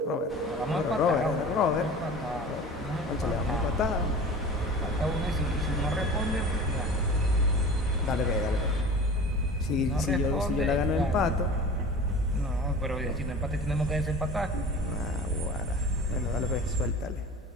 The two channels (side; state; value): both; normal; correlation 0.38